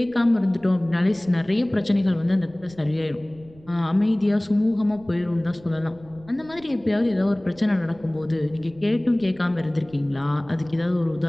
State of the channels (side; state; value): right; noise; rumble, 24 dB below the sound